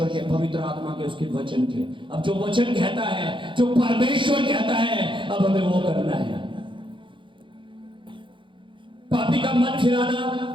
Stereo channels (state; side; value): late; left; 0.24 ms